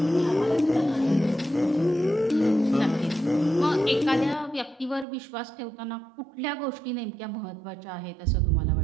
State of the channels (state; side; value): drops out; left; at 5.1 s